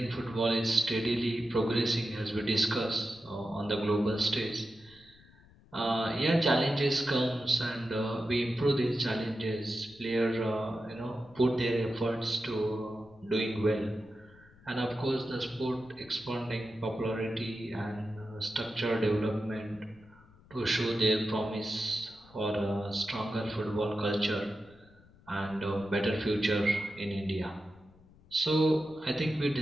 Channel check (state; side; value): noise; left; rumble, 26 dB below the sound